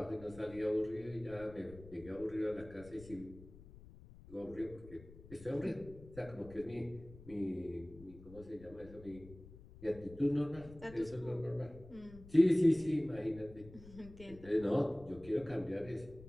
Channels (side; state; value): left; noise; rumble, 18 dB below the sound